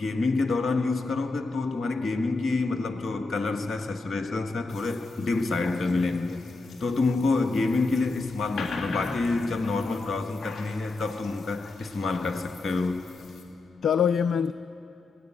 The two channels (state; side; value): quieter; right; 3.6 dB